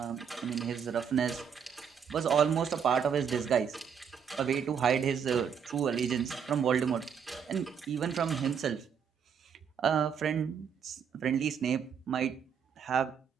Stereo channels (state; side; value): quieter; left; 7.3 dB